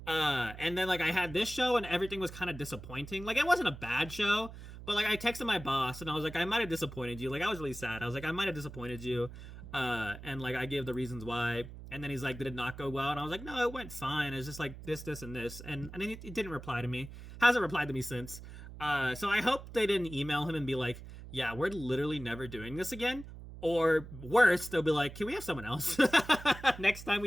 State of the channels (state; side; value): noise; right; hum, 13 dB below the sound